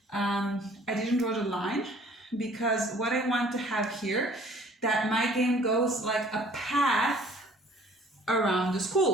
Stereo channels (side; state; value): both; normal; correlation 0.54